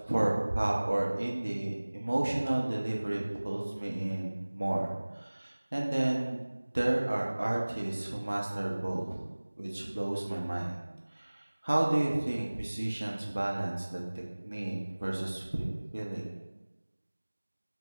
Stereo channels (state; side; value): inverted; both; correlation -1.00